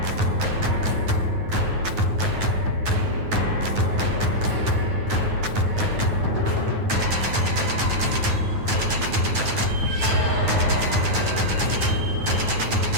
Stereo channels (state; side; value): late; left; 9.3 ms